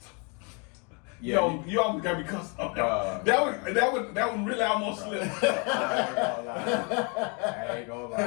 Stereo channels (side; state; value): right; quieter; 33.9 dB